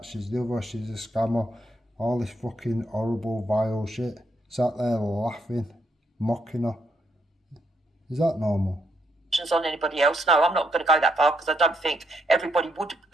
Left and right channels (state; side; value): normal; both; correlation 0.76